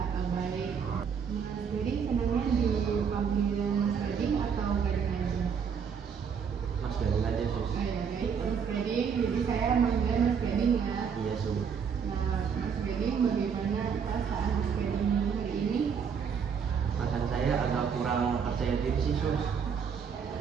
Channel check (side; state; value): left; quieter; 6.7 dB